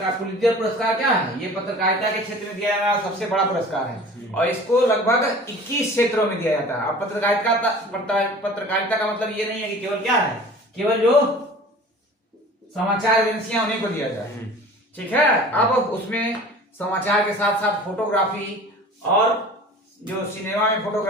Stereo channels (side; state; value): both; normal; correlation 0.42